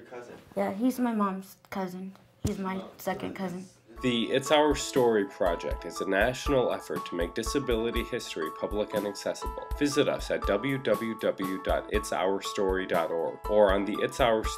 cousin? Yeah, he's my mom's cousin. He's my second cousin. The It's Our Story project is a national effort to make disability history public and accessible. Visit us at www.itsourstory.org or on the It's Our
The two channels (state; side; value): identical; both; correlation 1.00